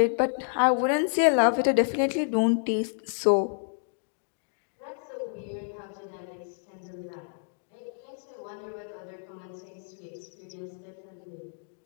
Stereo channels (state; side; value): silent; right; digital silence